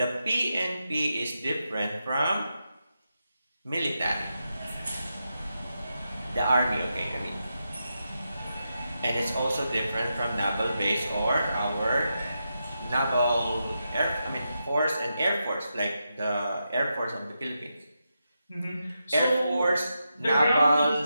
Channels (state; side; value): inverted; both; correlation -0.87